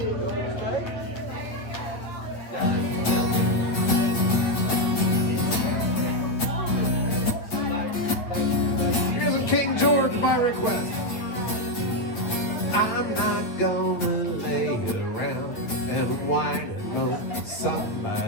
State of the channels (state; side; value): late; right; 8.8 ms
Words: Here's a King George by request. I'm not gonna lay around and whine and moan.